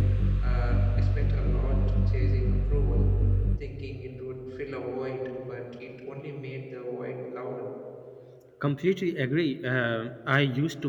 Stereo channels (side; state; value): both; identical; correlation 1.00